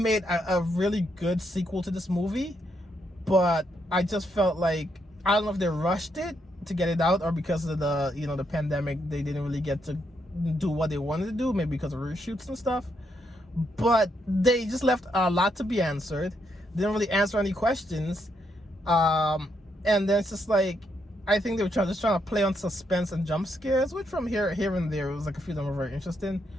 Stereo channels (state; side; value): normal; both; correlation 0.77